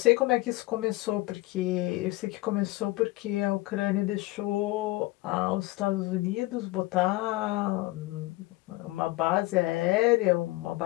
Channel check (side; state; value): right; quieter; 20.0 dB